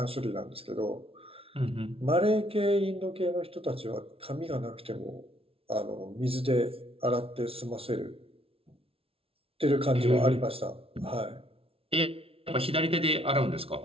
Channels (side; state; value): left; late; 0.27 ms